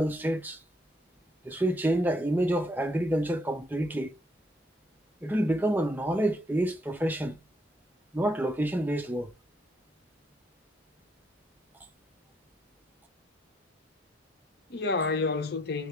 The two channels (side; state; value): both; normal; correlation 0.73